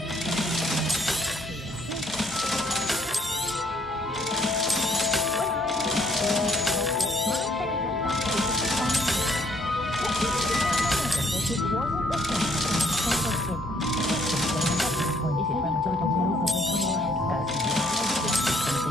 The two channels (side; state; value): both; normal; correlation 0.66